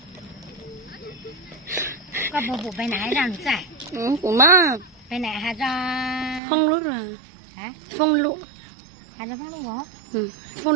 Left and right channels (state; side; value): drops out; left; at 6.4 s